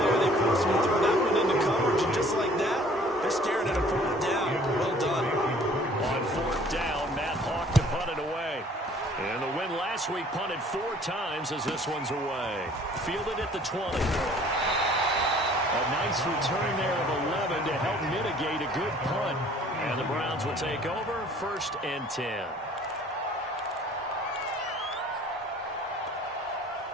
They forced him to throw that one into coverage, and just like that, they're staring at a 4th down. Well done. On 4th down, Matt Hawk to punt it away. And the win last week punted 4 times as this one's away. Fielded at the 20. A nice return there of 11 to help mitigate a good punt. And the Browns will take over 1st and 10.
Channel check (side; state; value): both; normal; correlation 0.54